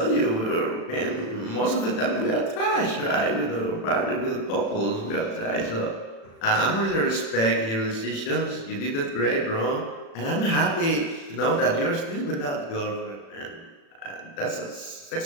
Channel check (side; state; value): right; late; 36 ms